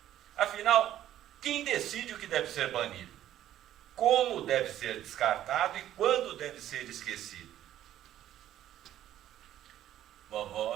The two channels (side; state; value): left; quieter; 12.2 dB